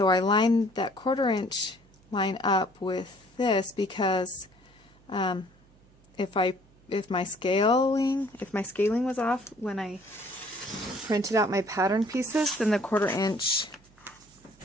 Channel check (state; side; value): noise; right; hum, 29 dB below the sound